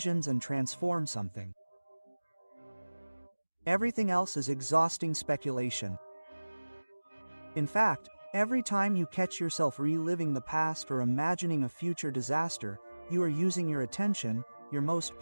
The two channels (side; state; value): both; inverted; correlation -1.00